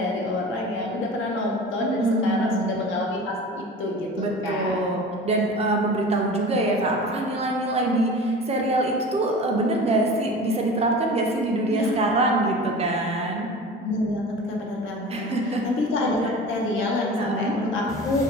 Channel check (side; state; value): both; normal; correlation 0.37